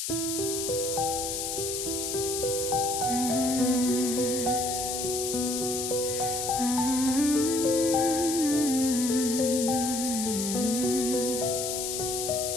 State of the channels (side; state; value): left; noise; hiss, 3 dB below the sound